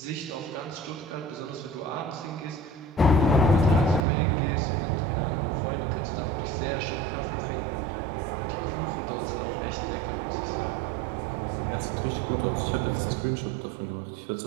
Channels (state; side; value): drops out; left; at 4.0 s